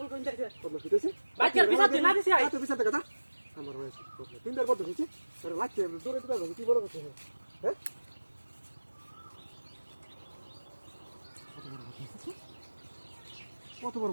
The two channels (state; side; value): inverted; both; correlation -1.00